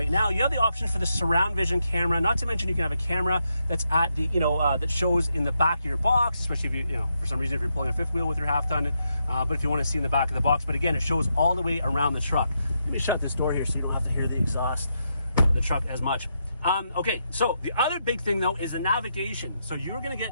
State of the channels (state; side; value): inverted; both; correlation -0.81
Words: now, you have the option for the surround vision camera. Not to mention you can have a camera that's at the, that shows in the back of your box, especially if you, for some reason, if you're pulling a fifth wheel with your half ton, but if you want to see in the back of the box. But again, it shows all the way around the truck. Let me shut this door here so you don't have to hear the exhaust of the truck as much. Okay, so the other big thing though is the navigation. So you're going to